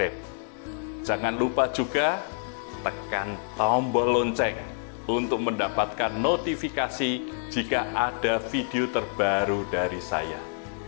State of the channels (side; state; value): right; silent; 60 dB below the other